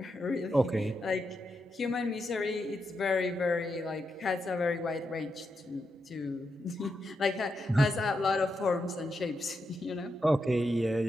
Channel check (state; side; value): normal; both; correlation 0.85